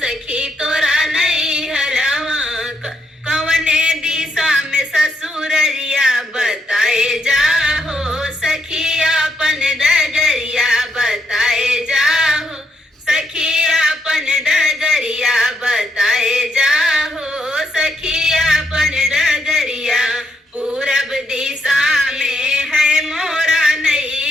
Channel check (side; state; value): both; normal; correlation 0.77